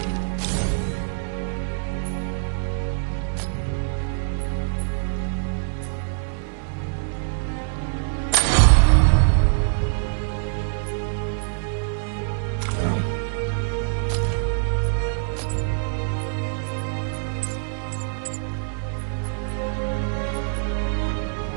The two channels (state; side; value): silent; left; 62 dB below the other